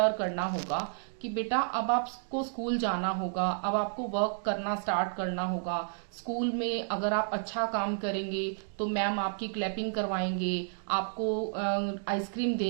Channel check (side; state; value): left; silent; digital silence